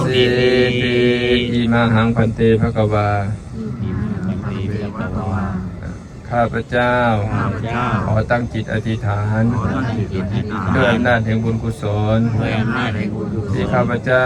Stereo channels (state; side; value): identical; both; correlation 1.00